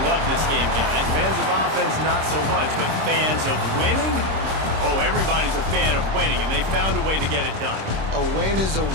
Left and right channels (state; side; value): late; left; 26 ms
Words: love this game, guys. Fans of offense, not so much. But fans of winning? Oh, everybody's a fan of winning, and they found a way to get it done. A win is a